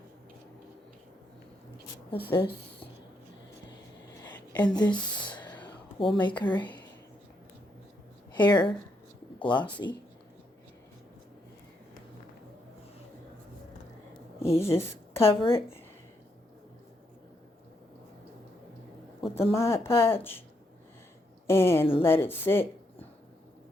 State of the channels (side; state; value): both; normal; correlation 0.78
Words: with this. And this will make her hair glossy. You just cover it with the Mod Podge and let it sit.